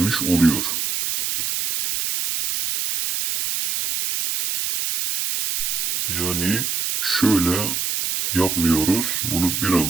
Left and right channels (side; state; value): right; noise; hiss, 1 dB below the sound